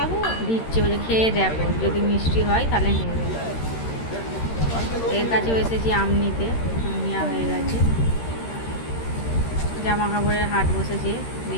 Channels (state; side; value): late; right; 13 ms